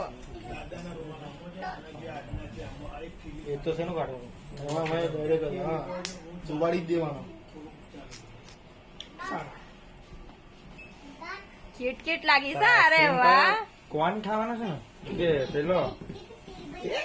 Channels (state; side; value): identical; both; correlation 1.00